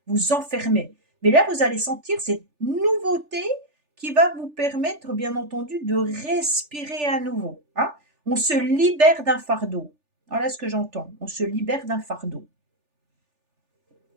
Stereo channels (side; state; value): left; late; 3.4 ms